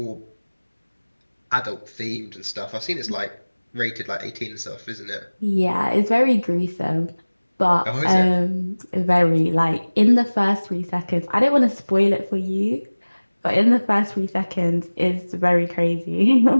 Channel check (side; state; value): both; inverted; correlation -1.00